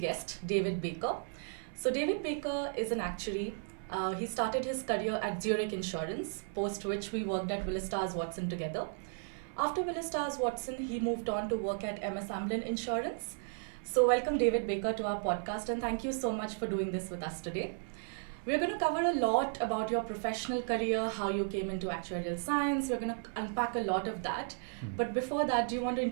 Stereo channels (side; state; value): left; silent; 55 dB below the other